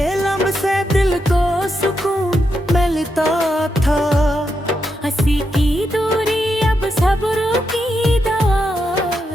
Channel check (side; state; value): both; normal; correlation 0.84